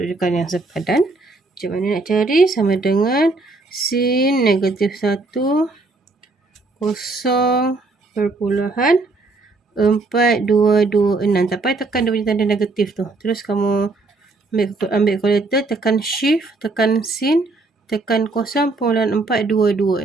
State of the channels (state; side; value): quieter; left; 3.4 dB